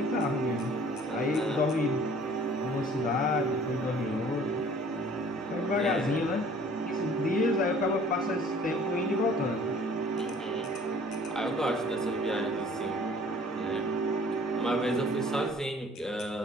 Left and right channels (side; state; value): both; normal; correlation 0.53